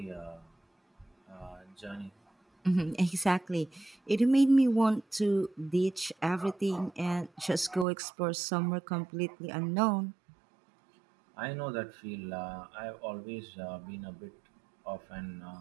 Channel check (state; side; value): drops out; left; at 7.9 s